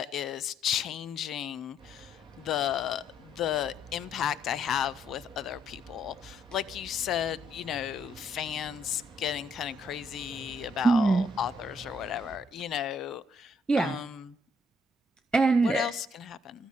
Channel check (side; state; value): both; normal; correlation 0.70